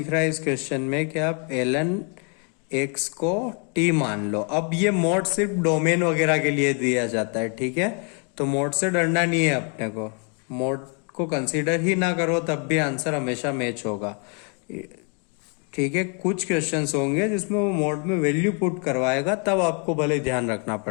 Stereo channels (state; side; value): quieter; right; 38.5 dB